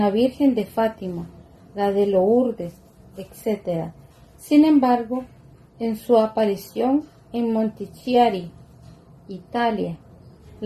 Virgen de Fátima, la de Lourdes, etc. Sin embargo, en su aparición en Montichiari, Italia,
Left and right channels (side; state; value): both; identical; correlation 1.00